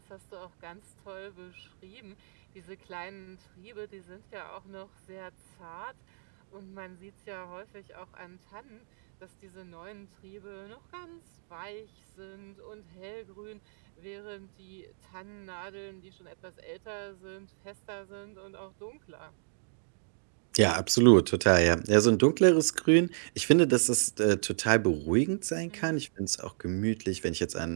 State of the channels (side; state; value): left; silent; digital silence